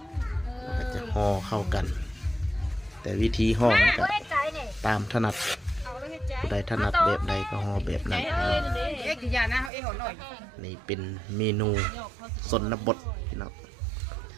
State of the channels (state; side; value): drops out; left; at 9.7 s